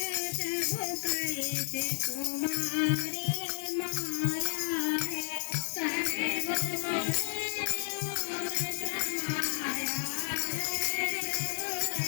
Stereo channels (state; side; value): silent; right; 56 dB below the other